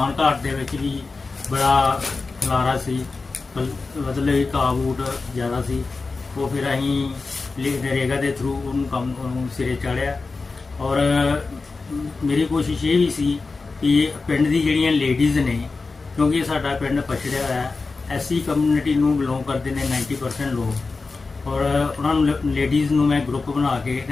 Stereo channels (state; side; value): quieter; right; 4.0 dB